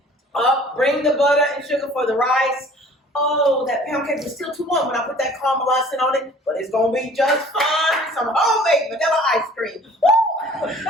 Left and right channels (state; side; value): normal; both; correlation 0.50